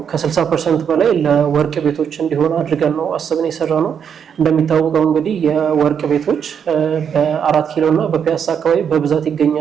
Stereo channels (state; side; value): quieter; left; 7.7 dB